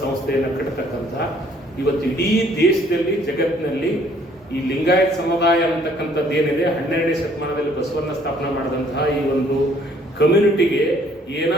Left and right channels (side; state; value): both; normal; correlation 0.61